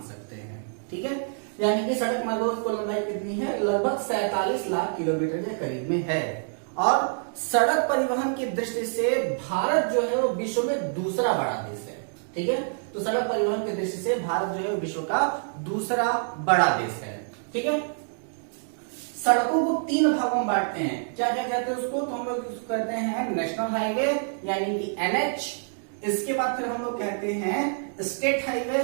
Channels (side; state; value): left; silent; digital silence